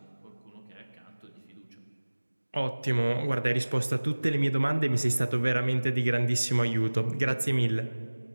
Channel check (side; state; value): both; inverted; correlation -1.00